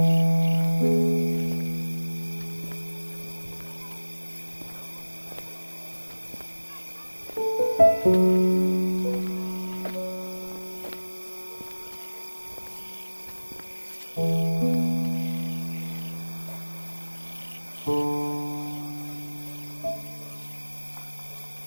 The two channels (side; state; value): both; inverted; correlation -1.00